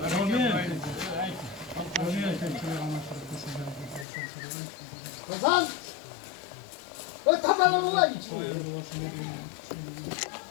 Hasan! O tabanı mı var içinde?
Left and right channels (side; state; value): right; drops out; at 4.0 s